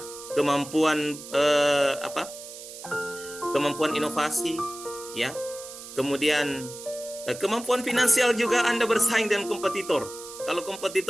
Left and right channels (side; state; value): right; noise; hiss, 13 dB below the sound